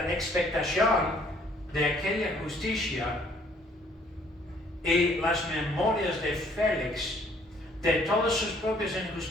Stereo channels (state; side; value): normal; both; correlation 0.62